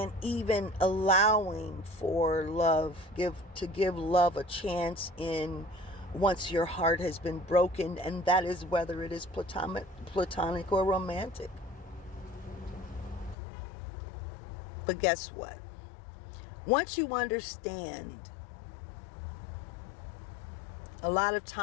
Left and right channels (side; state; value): right; drops out; at 13.4 s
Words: even allowing for love, to give love a chance in once your heart has been broken, and that is whether it is platonic or romantic. But guess what? Once you understand a lot of